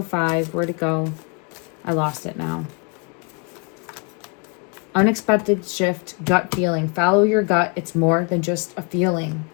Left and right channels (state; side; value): quieter; right; 33.3 dB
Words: Where'd it go? I lost it now. Unexpected shift, gut feeling. Follow your gut. It's more than just a feeling.